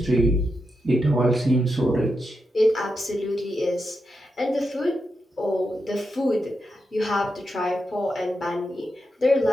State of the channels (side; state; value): both; normal; correlation 0.86